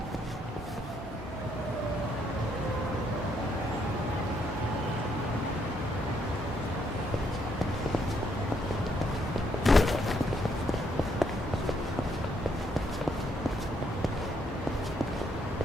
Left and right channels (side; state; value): both; normal; correlation 0.73